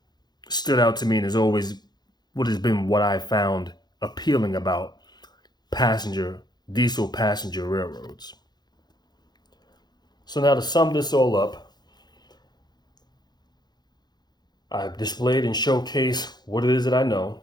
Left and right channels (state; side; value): late; right; 0.20 ms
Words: stood out to me and is always what I found appealing about diesel passenger railroads. So now to sum this all up, I've displayed and showcased what it is that I know.